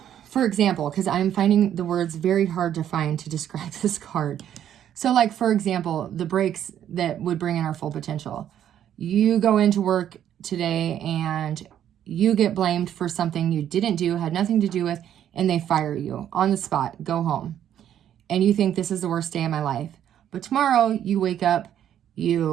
for example, because I'm finding the words very hard to find to describe this card. So like, for example, the breaks that would bring in our full potential. You go into work today and you get blamed for something you didn't do, had nothing to do with, and they fire you on the spot, go home. And you think this is the worst day of my life. But tomorrow you wake up,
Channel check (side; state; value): left; quieter; 10.3 dB